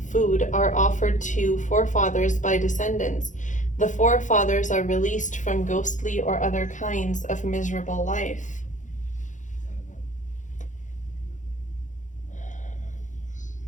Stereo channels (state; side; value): late; right; 0.36 ms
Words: food, are offered to forefathers by descendants, the forefathers are released from ghostly or other kinds of miserable life.